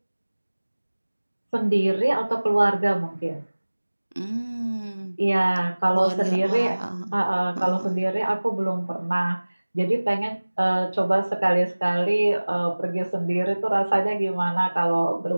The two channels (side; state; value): both; inverted; correlation -1.00